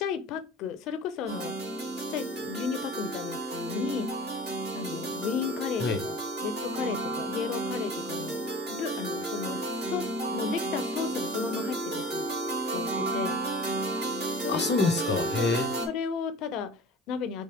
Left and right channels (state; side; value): normal; both; correlation 0.41